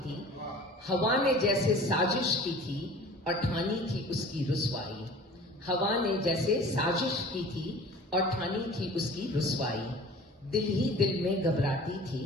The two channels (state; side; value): normal; both; correlation 0.44